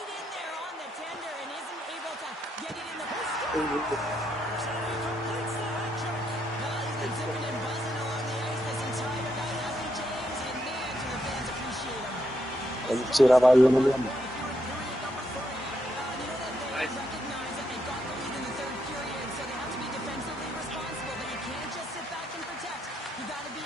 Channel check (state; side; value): normal; both; correlation 0.78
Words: in there on the tender and isn't able to get it in the post. And he completes the hat trick. Well, he's been zipping and buzzing along the ice this entire night, hasn't he, James? And man, do the fans appreciate him. Přidávají jenom jemu. Recognize that they've got the lead in the third period, so they have to be defensively responsible, but you can't just sit back and protect. You got to be